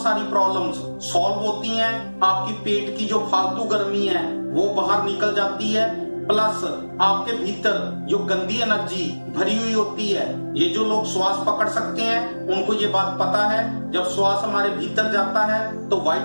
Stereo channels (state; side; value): inverted; both; correlation -1.00